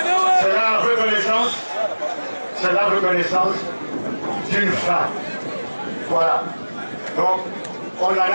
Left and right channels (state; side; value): inverted; both; correlation -1.00